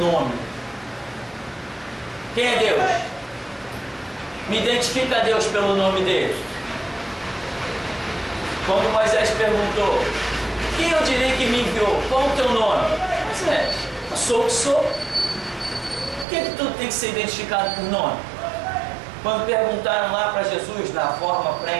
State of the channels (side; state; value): left; drops out; at 16.2 s